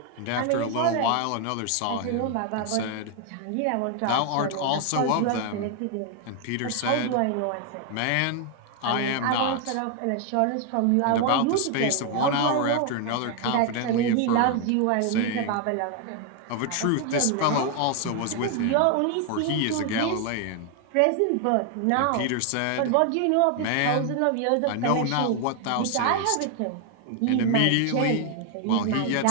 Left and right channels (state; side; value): different; both; correlation 0.01